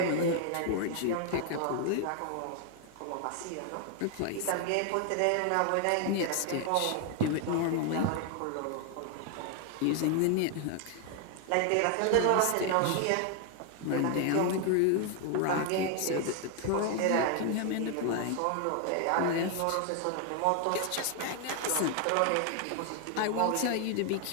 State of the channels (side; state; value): both; different; correlation 0.01